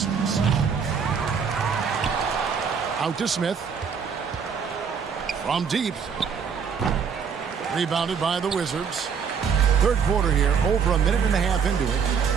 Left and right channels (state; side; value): quieter; left; 6.5 dB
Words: Out to Smith. From deep. Rebounded by the Wizards. Third quarter here, over a minute and a half into it.